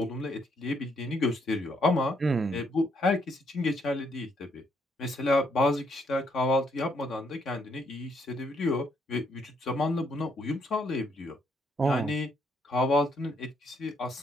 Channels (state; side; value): normal; both; correlation 0.72